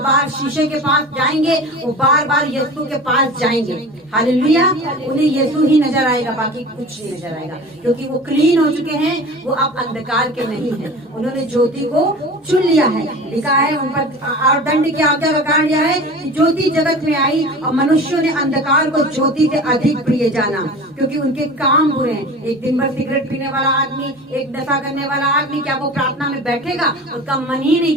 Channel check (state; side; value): normal; both; correlation 0.36